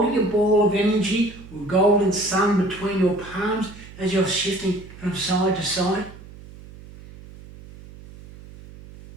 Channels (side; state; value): right; noise; hum, 18 dB below the sound